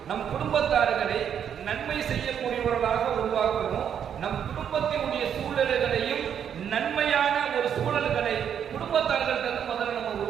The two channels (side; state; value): left; quieter; 8.5 dB